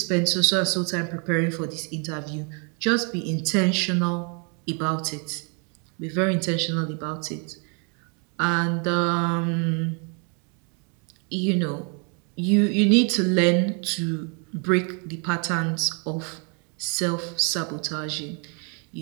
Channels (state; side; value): quieter; left; 36.9 dB